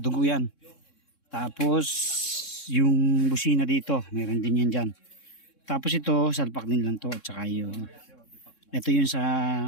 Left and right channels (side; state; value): right; late; 3.6 ms